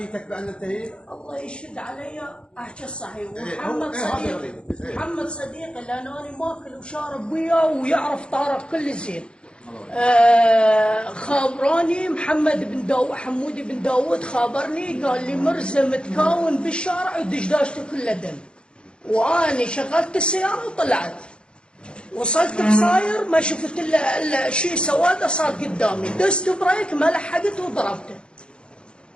بان انتهيت؟ الله يشهد علي احكي الصحيح. إيه، ومحمد هو- إيه، هذا صديقي غريب. إيه. محمد صديقي لان انا ماكل وشارب وياه ويعرف طارق كل زين. خابراني محمد بن داوود، حمودي بن داوود خابرني قال لي مرزا متكون بالشارع ودشداشته كلها دم. واني شغلت السياره وطلعت، وصلت بصاير ما شفت الا شيء سواده صار قدامي، دست بريك ما لحقت وضربته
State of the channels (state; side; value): late; right; 0.054 ms